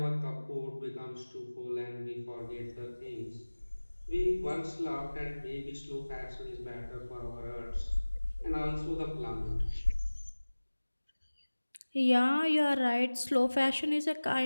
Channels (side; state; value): both; inverted; correlation -1.00